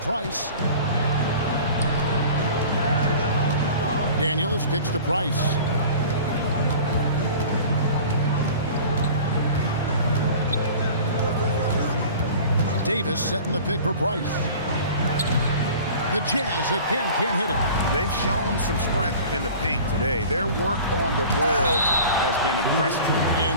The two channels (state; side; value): inverted; both; correlation -0.42